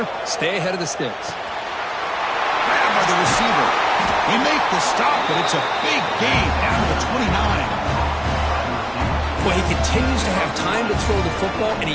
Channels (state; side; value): identical; both; correlation 1.00